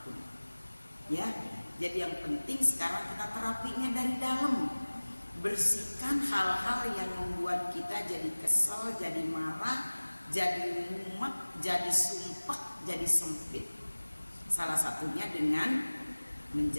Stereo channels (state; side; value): inverted; both; correlation -1.00